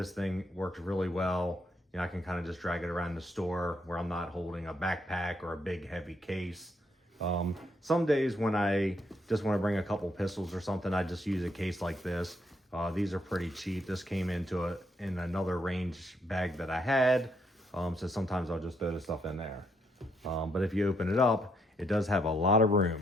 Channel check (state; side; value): normal; both; correlation 0.75